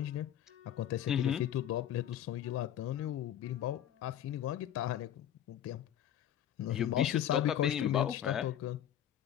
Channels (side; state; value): right; quieter; 10.7 dB